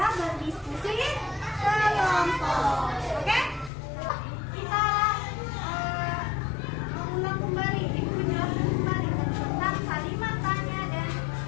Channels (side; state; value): right; drops out; at 3.7 s